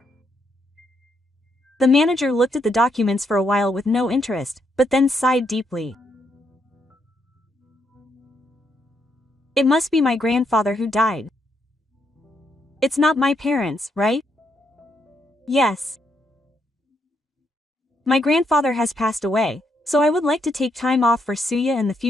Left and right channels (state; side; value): normal; both; correlation 0.77